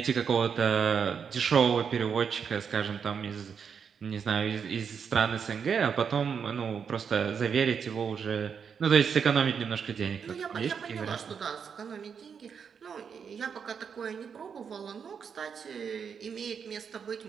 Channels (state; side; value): quieter; left; 6.8 dB